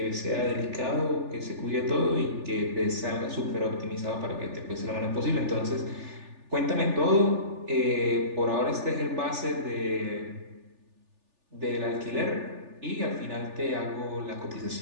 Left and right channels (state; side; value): late; left; 3.4 ms